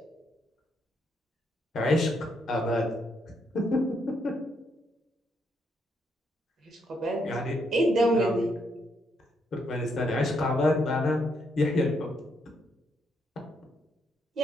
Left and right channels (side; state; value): both; normal; correlation 0.76